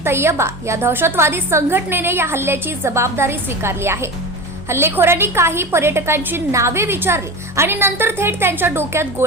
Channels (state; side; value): normal; both; correlation 0.28